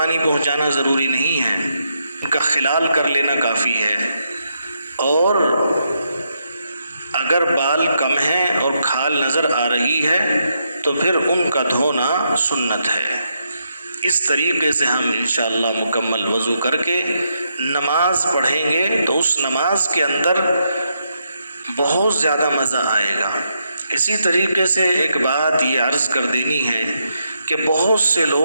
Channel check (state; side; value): inverted; both; correlation -0.80